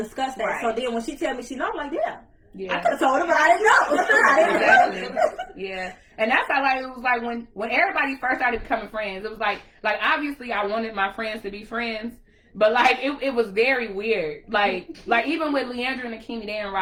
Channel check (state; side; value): identical; both; correlation 1.00